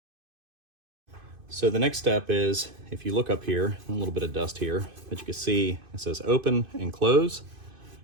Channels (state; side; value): late; left; 2.5 ms